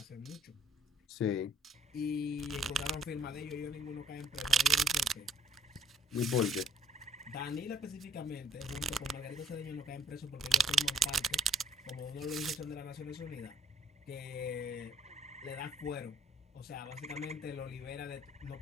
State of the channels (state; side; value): normal; both; correlation 0.61